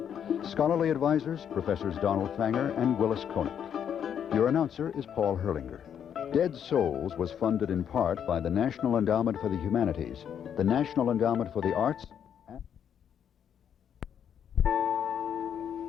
Scholarly advisors, Professors Donald Fanger and Willis Koenig. Your announcer is Paul Herlinger. Dead Souls was funded in part by the National Endowment for the Humanities, the National Endowment for the Arts, and...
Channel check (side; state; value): right; quieter; 8.6 dB